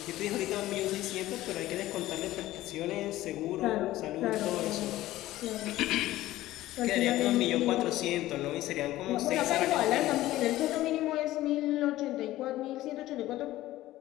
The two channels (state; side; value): quieter; right; 15.8 dB